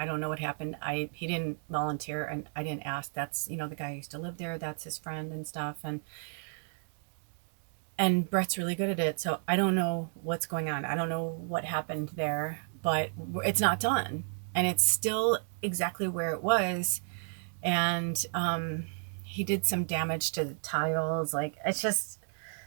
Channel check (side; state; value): left; silent; 56 dB below the other